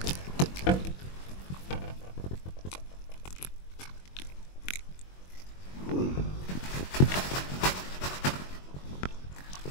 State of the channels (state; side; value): late; right; 21 ms